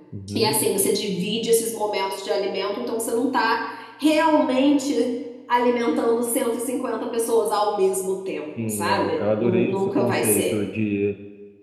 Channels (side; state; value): both; identical; correlation 1.00